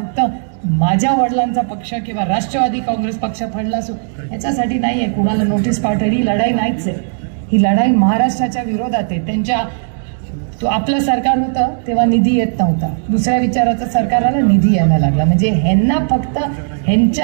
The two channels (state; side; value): silent; left; digital silence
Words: माझ्या वडिलांचा पक्ष किंवा राष्ट्रवादी काँग्रेस पक्ष फडला असो याच्यासाठी नाही आहे. कुणाला नोटीस पाठवली ही लढाई नाहीच आहे. ही लढाई महाराष्ट्राच्या विरोधात आहे. त्यांच्या तो आपलं सरकार होतं तेव्हा निधी येत नव्हता, दुसऱ्या विचाराचं सरकार आलं, निधी यायला लागला. म्हणजे ह्यांना फक्त